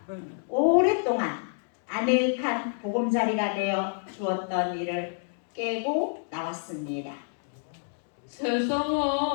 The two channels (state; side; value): silent; right; 59 dB below the other